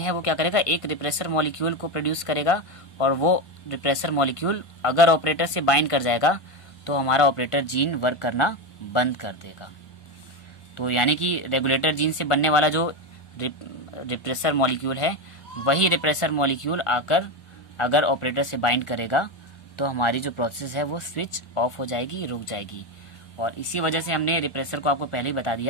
है वो क्या करेगा, एक रिप्रेसर मॉलिक्यूल को प्रोड्यूस करेगा और वो रिप्रेसर मॉलिक्यूल अगर ऑपरेटर से बाइंड कर जाएगा तो हमारा ऑपरेटर जीन वर्क करना बंद कर देगा। तो यानी कि रेगुलेटर जीन से बनने वाला जो रिप्रेसर मॉलिक्यूल है वही रिप्रेसर मॉलिक्यूल आकर अगर ऑपरेटर से बाइंड करेगा तो हमारी जो प्रोसेस है वो स्विच ऑफ हो जाएगी, रुक जाएगी। और इसी वजह से हमने रिप्रेसर को आपको पहले ही बता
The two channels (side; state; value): right; late; 1.4 ms